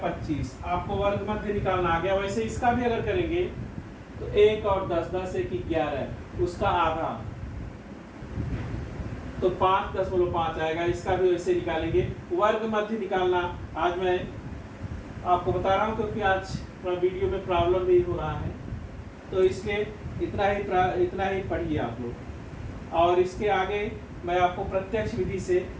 आपको वर्ग मध्य निकालना आ गया। वैसे इसका भी अगर करेंगे तो 1 और 10, 10 1 11, उसका आधा तो 5.5 आएगा। इसका भी वैसे निकालेंगे। वर्ग मध्य निकालना आज मैं आपको बता रहा हूँ क्योंकि आज थोड़ा वीडियो में प्रॉब्लम भी हो रहा है, तो इसलिए इतना ही पढ़िए आप लोग, और इसके आगे मैं आपको प्रत्यक्ष विधि से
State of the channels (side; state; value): both; identical; correlation 1.00